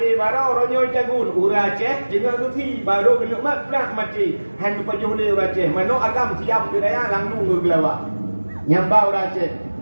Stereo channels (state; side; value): inverted; both; correlation -1.00